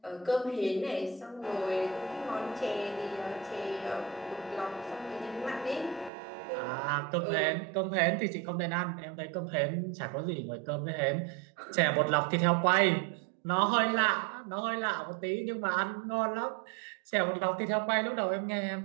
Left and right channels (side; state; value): left; drops out; at 6.1 s